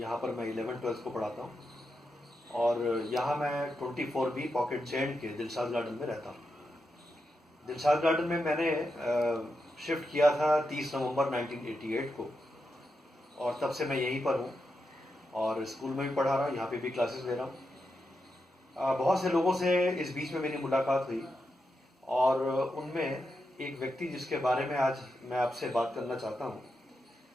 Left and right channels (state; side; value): normal; both; correlation 0.86